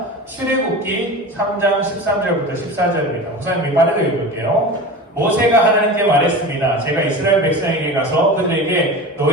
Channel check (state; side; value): normal; both; correlation 0.31